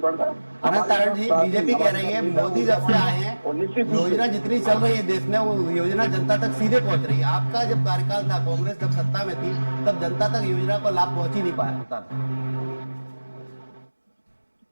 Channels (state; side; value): inverted; both; correlation -1.00